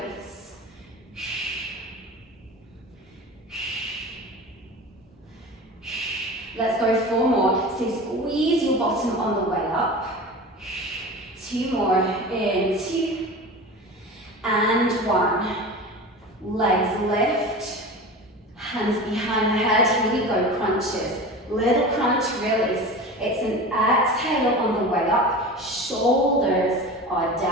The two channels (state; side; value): normal; both; correlation 0.33